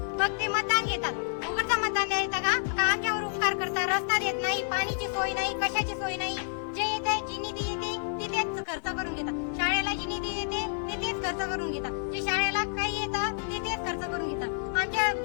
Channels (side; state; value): right; silent; 58 dB below the other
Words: मग ते मतदान घेतात. उघडचं मतदान द्यायचं का आमच्यावर उपकार करतात? रस्ता देत नाही, पाणीची सोय नाही, कशाची सोय नाही. जे येते जी निधी येते तिथेच खर्च करून घेतात. शाळेला जी निधी येते तिथेच खर्च करून घेतात. जे शाळेला काही येतं तिथेच खर्च करून घेतात. आमच्या